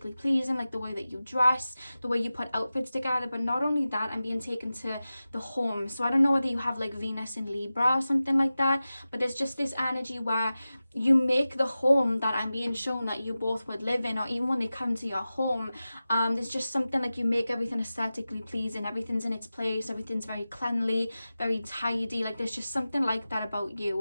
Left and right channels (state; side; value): inverted; both; correlation -0.95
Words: pleasing, like the way that you dress, the way you put outfits together. But not only that, I'm being taken to the home. So I don't know whether you have like Venus in Libra or something like that, but there's just this energy where you make the home that I'm being shown that you both would live in, or even when they come to your home, there's just something like you make everything aesthetically pleasing, everything's in its place, everything's very cleanly, very tidy. Like there's just something like that about